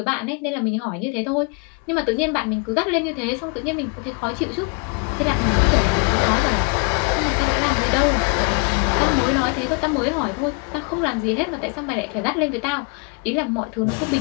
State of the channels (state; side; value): quieter; right; 32.4 dB